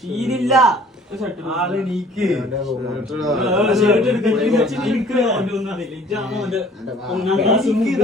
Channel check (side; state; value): both; normal; correlation 0.54